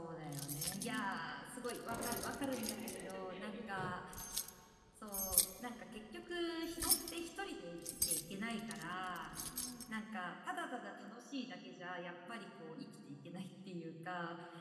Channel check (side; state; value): both; identical; correlation 1.00